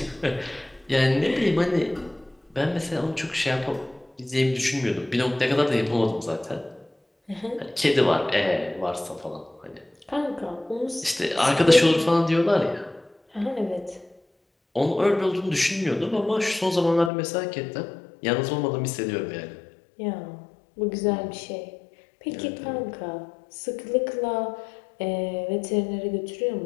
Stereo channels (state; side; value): drops out; right; at 17.1 s